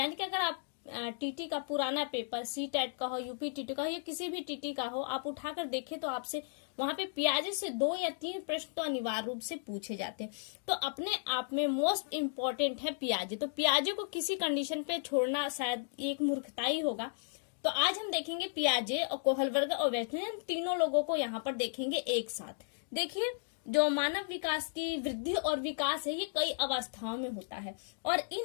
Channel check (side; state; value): right; silent; digital silence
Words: कि अगर आप टीटी का पुराना पेपर, सी टेट का हो, यूपी टीटी का हो या किसी भी टीटी का हो, आप उठाकर देखें तो आपसे वहां पे पियाजे से 2 या 3 प्रश्न तो अनिवार्य रूप से पूछे जाते हैं। तो अपने आप में मोस्ट इम्पोर्टेंट है पियाजे। तो पियाजे को किसी कंडीशन पे छोड़ना शायद एक मूर्खता ही होगा। तो आज हम देखेंगे पियाजे और कोहलबर्ग और वेस्टर्न, तीनों लोगों को यहाँ पर देखेंगे एक साथ। देखिए, जो मानव विकास की वृद्धि और विकास है ये कई अवस्थाओं में होता है और